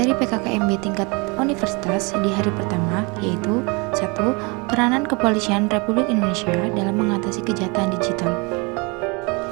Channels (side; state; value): left; quieter; 29.6 dB